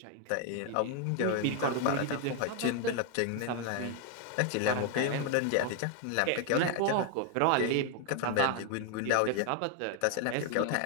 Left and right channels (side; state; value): both; different; correlation 0.00